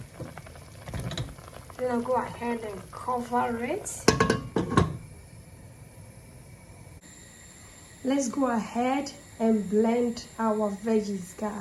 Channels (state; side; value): identical; both; correlation 1.00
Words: Then I'll go ahead and cover it. Let's go ahead and blend our veggies,